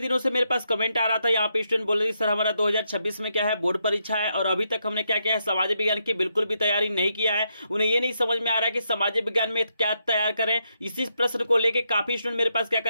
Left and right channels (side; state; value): both; inverted; correlation -0.80